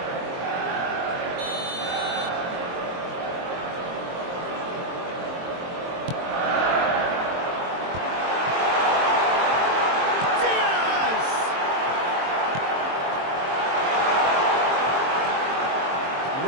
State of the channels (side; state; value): left; late; 22 ms